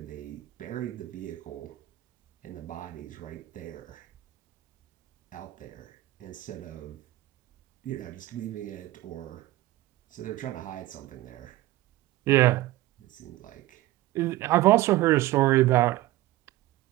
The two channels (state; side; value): quieter; left; 16.6 dB